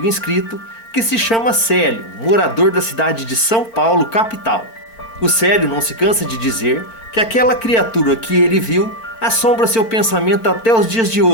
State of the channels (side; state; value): right; late; 4.4 ms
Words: inscrito, que se chama Célio, morador da cidade de São Paulo, capital. O Célio não se cansa de dizer que aquela criatura que ele viu assombra seu pensamento até os dias de